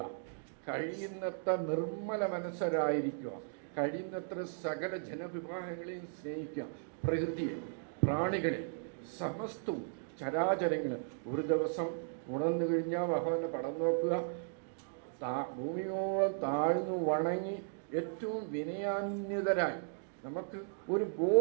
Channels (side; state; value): left; silent; digital silence